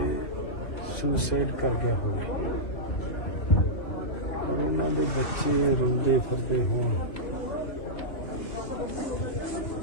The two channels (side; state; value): right; late; 2.7 ms